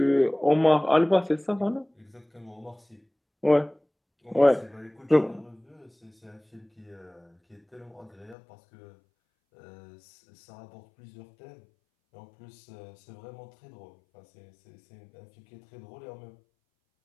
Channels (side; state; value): right; drops out; at 8.3 s